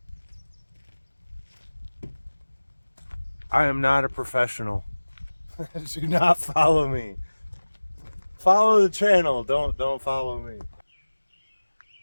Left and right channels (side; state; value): both; inverted; correlation -1.00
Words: I am not a professional. Do not follow me. Follow the channel, don't follow me.